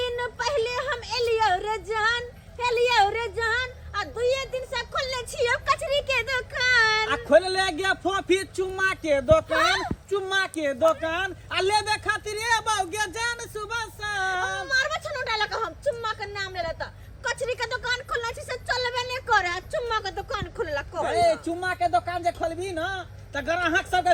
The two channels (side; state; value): both; identical; correlation 1.00